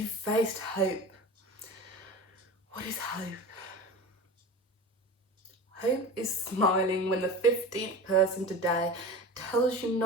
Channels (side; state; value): both; normal; correlation 0.32